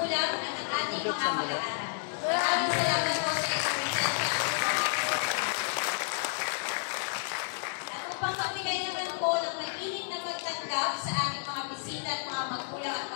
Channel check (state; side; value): silent; right; digital silence